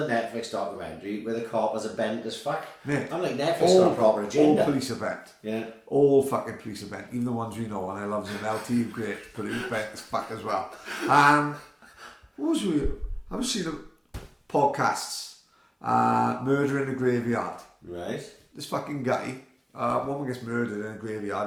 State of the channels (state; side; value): identical; both; correlation 1.00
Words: Netflix documentary where the coppers are bent as fuck. Mate, I'm like, Netflix got a proper agenda. All police are bent. Yeah. All fucking police are bent. Even the ones we know, and I love them. LT, great, but he was bent as fuck as well. What was we? I was seeing podcasts. Murder in a Graveyard. Right. This fucking guy, woman gets murdered in a